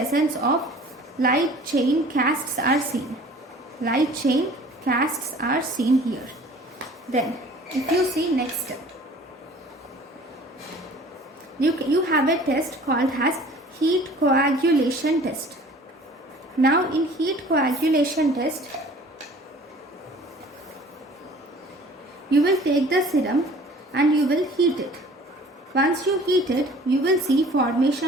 of light chain casts are seen. Light chain casts are seen here. Then if you see next, you have a test called as heat coagulation test. Now in heat coagulation test, you will take the serum and you will heat it. Once you heat it, you will see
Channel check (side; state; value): both; normal; correlation 0.49